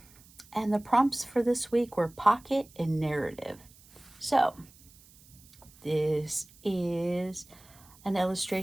And the prompts for this week were pocket and narrative. So, this is an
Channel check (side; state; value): right; noise; hiss, 25 dB below the sound